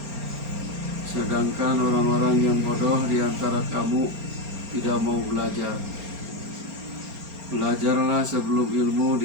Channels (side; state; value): left; late; 4.3 ms